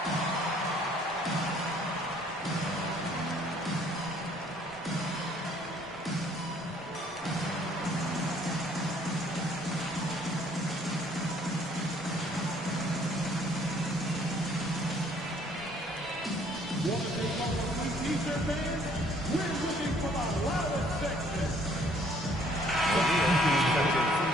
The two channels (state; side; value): normal; both; correlation 0.61